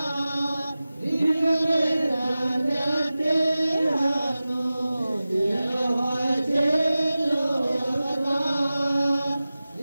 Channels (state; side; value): inverted; both; correlation -0.96